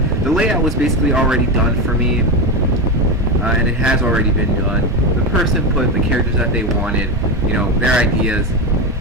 The layout was basically already done for me, and it has already been done. The person put the characters that they wanted, their ideas.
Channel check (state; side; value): normal; both; correlation 0.14